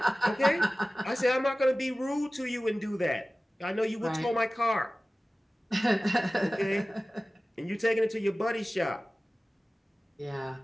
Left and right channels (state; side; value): normal; both; correlation 0.97